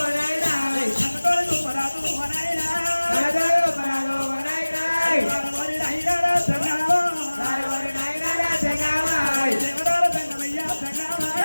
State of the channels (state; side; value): inverted; both; correlation -1.00